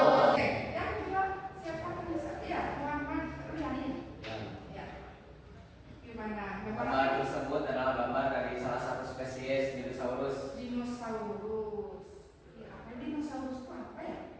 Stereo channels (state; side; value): identical; both; correlation 1.00